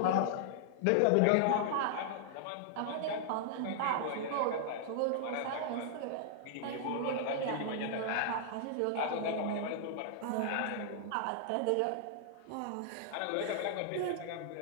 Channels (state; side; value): different; both; correlation -0.01